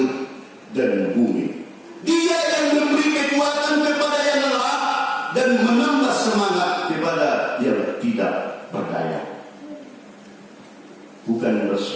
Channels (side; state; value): both; identical; correlation 1.00